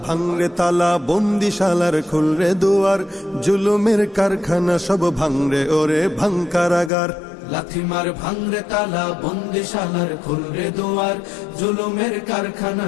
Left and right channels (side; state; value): right; drops out; at 6.9 s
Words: ভাঙরে তালা, বন্দিশালার খুলরে দুয়ার, জুলুমের কারখানা সব ভাঙরে ওরে ভাঙ কারাগার। লাথিমার ভাঙরে তালা, বন্দিশালার খুলরে দুয়ার, জুলুমের কারখানা